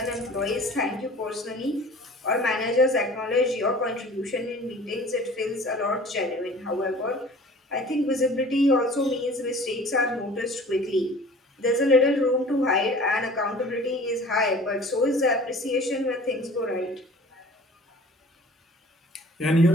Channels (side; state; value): both; normal; correlation 0.46